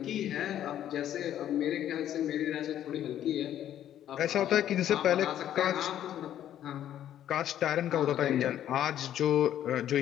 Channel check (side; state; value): right; quieter; 11.2 dB